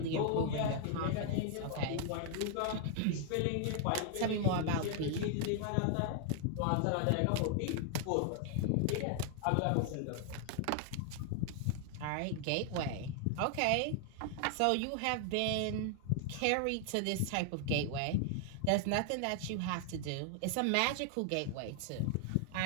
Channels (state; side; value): different; both; correlation 0.00